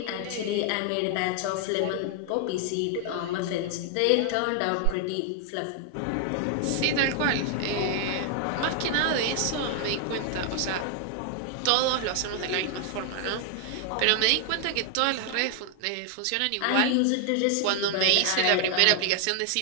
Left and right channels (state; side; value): different; both; correlation 0.00